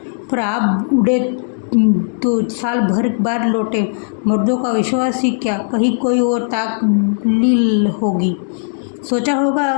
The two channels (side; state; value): right; silent; digital silence